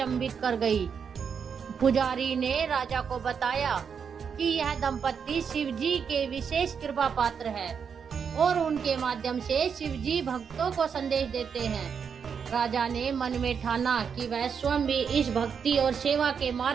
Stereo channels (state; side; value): quieter; left; 6.7 dB